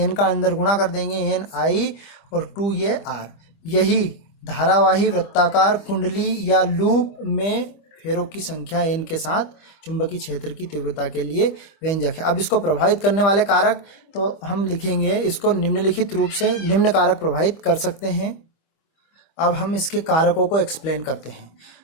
का अंदर गुणा कर देंगे, n i और 2 ये r। यही धारावाही वृत्ताकार कुंडली या लूप में फेरों की संख्या n के साथ चुंबकीय क्षेत्र की तीव्रता के लिए व्यंजक है। अब इसको प्रभावित करने वाले कारक तो हम लिखेंगे इसको निम्नलिखित रूप से, निम्न कारक प्रभावित कर सकते हैं। अब हम इसके कारकों को एक्सप्लेन करते हैं।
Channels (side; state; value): right; late; 25 ms